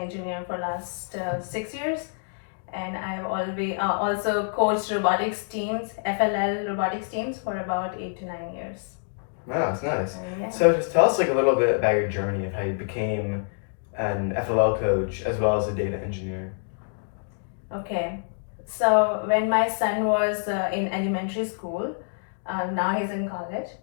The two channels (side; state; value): right; silent; digital silence